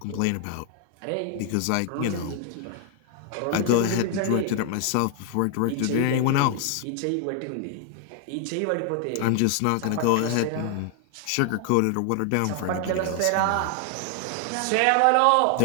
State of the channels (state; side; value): different; both; correlation 0.00